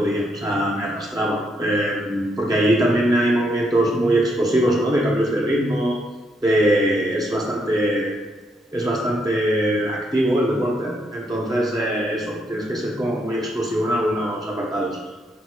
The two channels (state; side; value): normal; both; correlation 0.75